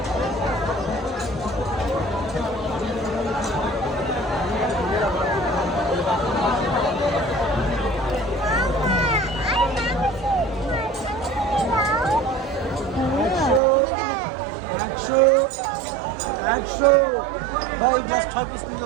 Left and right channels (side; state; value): left; drops out; at 13.6 s